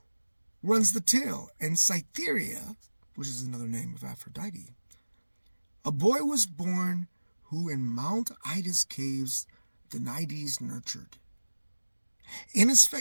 runs the tale, and Cytherea, which is another name of Aphrodite, a boy was born who in Mount Ida's caves the Naiades nurtured. In his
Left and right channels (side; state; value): both; inverted; correlation -1.00